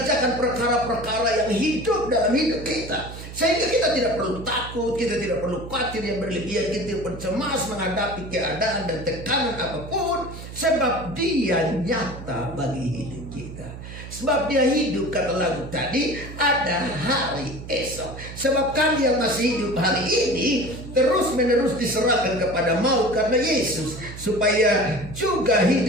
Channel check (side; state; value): right; noise; hum, 12 dB below the sound